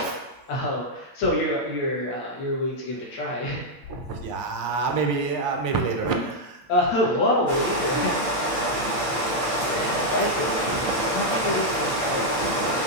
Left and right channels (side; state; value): right; late; 8.7 ms